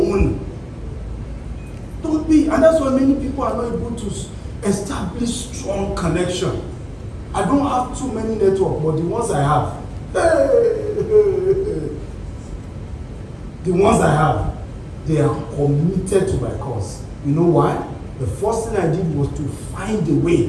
Don't be, and that's why many people are not able to establish strong connection. I don't have too many networks, but the ones I have, the ones I have, they are committed to my cause. You know why? The first thing I did was to find a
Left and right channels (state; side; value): identical; both; correlation 1.00